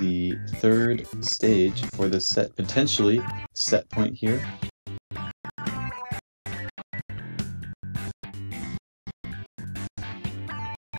3rd stage for the set, potentially set point here.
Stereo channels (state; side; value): inverted; both; correlation -1.00